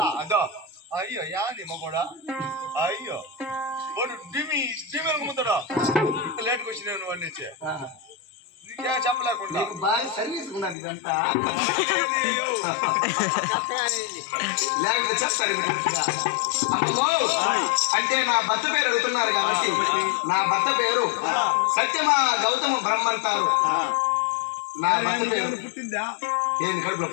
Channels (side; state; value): right; drops out; at 10.8 s